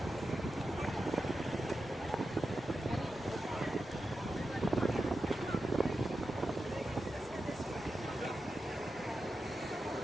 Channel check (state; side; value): normal; both; correlation 0.90